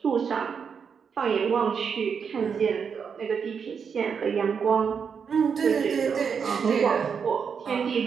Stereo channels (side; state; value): left; quieter; 6.5 dB